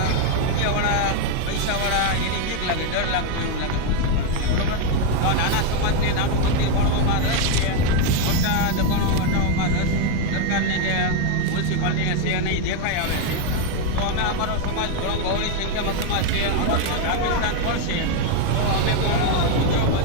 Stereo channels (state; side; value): different; both; correlation 0.01